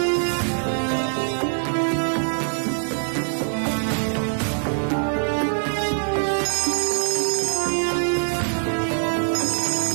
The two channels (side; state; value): left; silent; 63 dB below the other